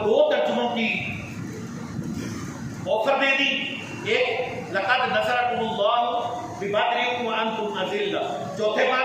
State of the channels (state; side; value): identical; both; correlation 1.00